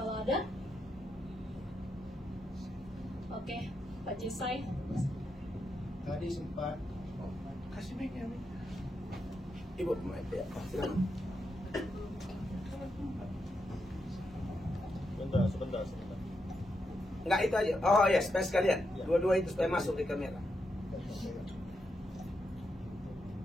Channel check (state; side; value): normal; both; correlation 0.83